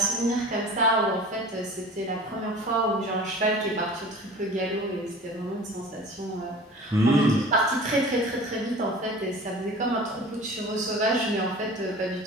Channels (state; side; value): normal; both; correlation 0.41